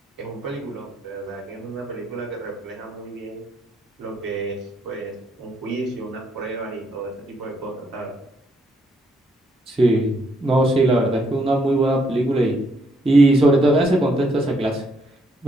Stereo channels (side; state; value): both; normal; correlation 0.73